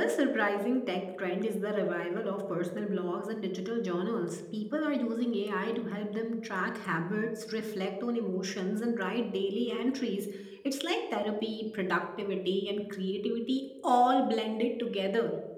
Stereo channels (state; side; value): identical; both; correlation 1.00